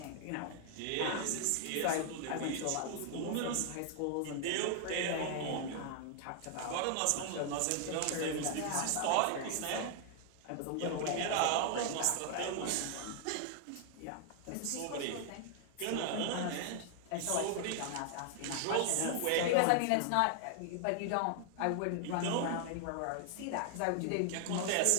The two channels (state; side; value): different; both; correlation 0.00